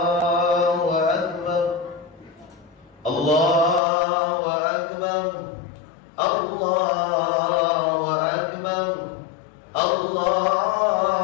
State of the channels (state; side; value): drops out; right; at 3.8 s